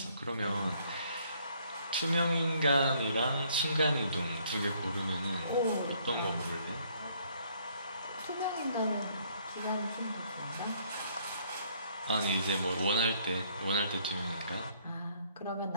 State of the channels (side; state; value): both; inverted; correlation -0.64